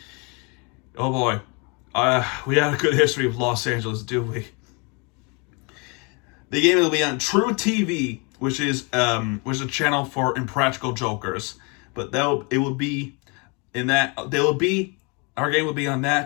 Oh boy, we had a good history of Los Angeles, do we? The game will be on True TV, which is a channel for impractical jokers. But our game will be on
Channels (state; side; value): quieter; right; 31.7 dB